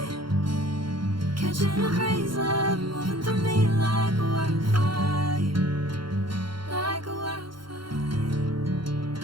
Catching a crazy love, moving through me like a wildfire, like a wildfire.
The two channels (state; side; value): late; left; 0.73 ms